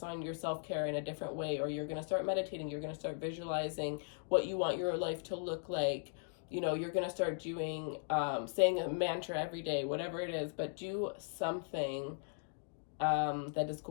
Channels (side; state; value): right; silent; digital silence